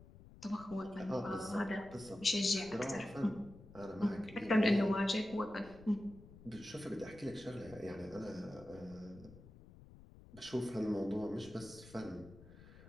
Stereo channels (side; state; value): left; noise; rumble, 19 dB below the sound